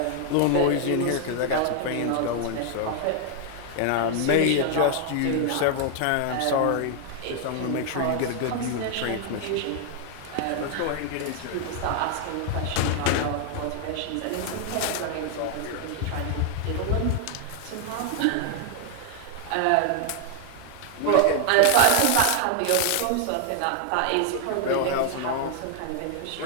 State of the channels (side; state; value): both; different; correlation 0.00